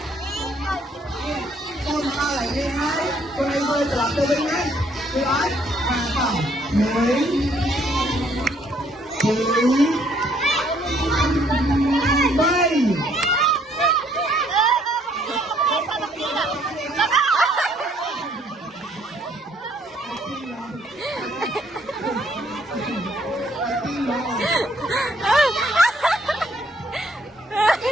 Con đau lại đi đấy. Con này bơi trở lại từ bên đấy. Đi đấy. Hàng phòng. Đấy. Bay.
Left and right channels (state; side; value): normal; both; correlation 0.66